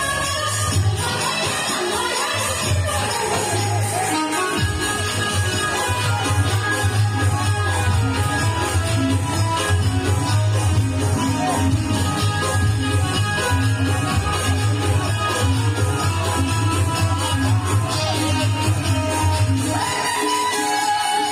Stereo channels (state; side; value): identical; both; correlation 1.00